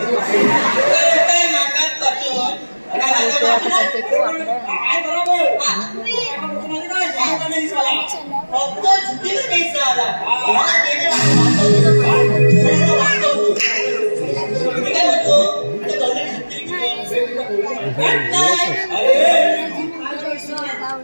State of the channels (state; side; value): inverted; both; correlation -1.00